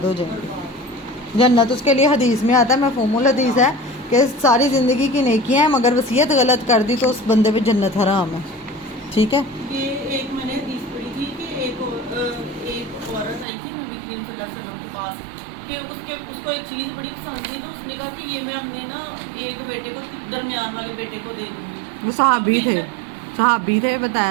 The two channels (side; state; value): left; drops out; at 13.5 s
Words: ہو جائیں گے. جنت اس کے لیے حدیث میں آتا ہے، مفہوم الحدیث ہے کہ ساری زندگی کی نیکیاں ہیں مگر وصیت غلط کر دی تو اس بندے پہ جنت حرام ہے. ٹھیک ہے. یہ ایک میں نے حدیث پڑھی تھی کہ ایک عورت آئی تھی نبی کریم صلی اللہ علیہ وسلم کے پاس کہ اس کو ایک چیز بڑی پسند تھی، تو اس نے کہا کہ یہ میں اپنے نا ایک بیٹے کو درمیان والے بیٹے کو دے دوں گی. وہ صحابی تھے